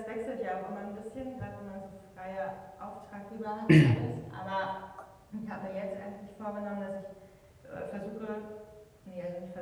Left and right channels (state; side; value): identical; both; correlation 1.00